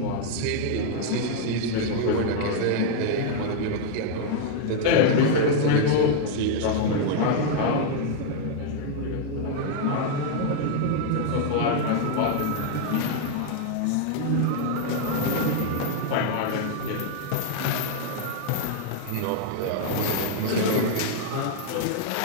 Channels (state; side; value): different; both; correlation 0.00